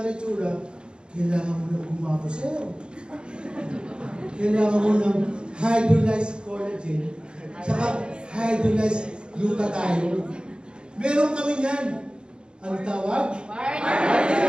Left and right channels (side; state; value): left; late; 0.052 ms